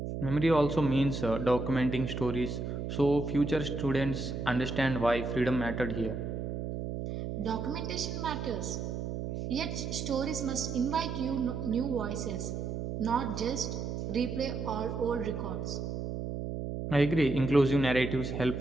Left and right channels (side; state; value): right; noise; hum, 4 dB below the sound